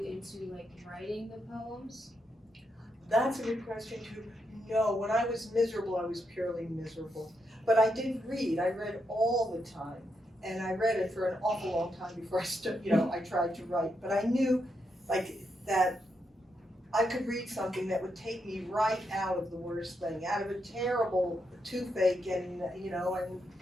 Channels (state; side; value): normal; both; correlation 0.82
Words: into like writing the poems? That's a good question too. No, when I was miserable, I was purely miserable. But I did read. I read all the time, and I read it for an awful long time before I tried to write. But I knew, like, that I could read something that would take me right out of the worst thing, out of a terrible toothache, and